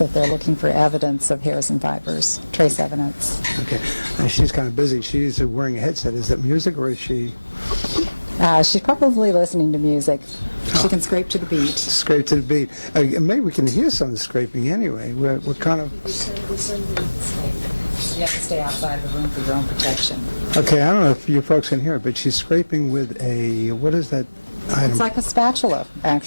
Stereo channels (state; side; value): inverted; both; correlation -1.00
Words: they're looking for evidence of hairs and fibers, trace evidence. Okay. She's kind of busy. She's wearing a headset. Is that music, or is she... She's probably listening to music. She can scrape to the beat. Scrape to the beat. Maybe we can hear some of the scraping anyway. We're kind of... You have to stay outside the room for your own protection. Okay, I don't know if you folks can hear it, but she's scraping with a... What is that item? It's like a spatula,